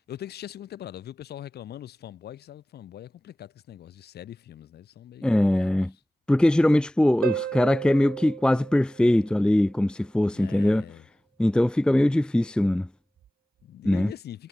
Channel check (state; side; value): normal; both; correlation 0.97